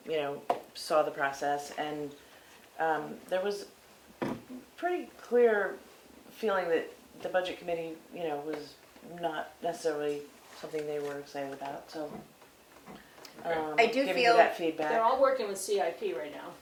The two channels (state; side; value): identical; both; correlation 1.00